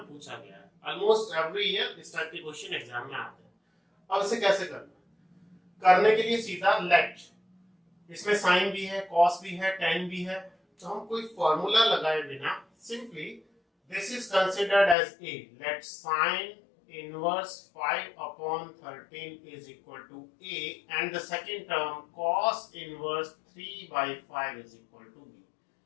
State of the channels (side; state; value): right; drops out; at 15.0 s